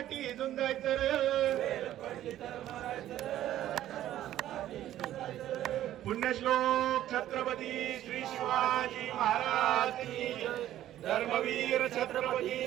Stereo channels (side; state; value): left; quieter; 12.8 dB